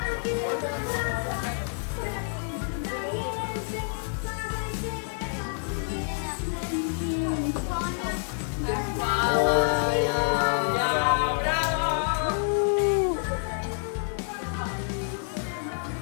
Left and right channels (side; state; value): right; silent; 59 dB below the other